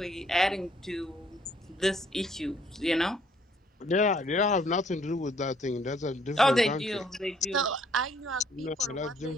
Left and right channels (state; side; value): normal; both; correlation 0.64